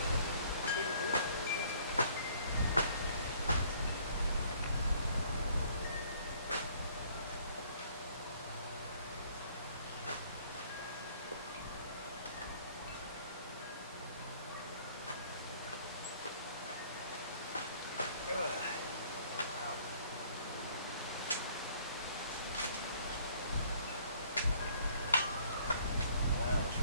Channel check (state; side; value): inverted; both; correlation -0.59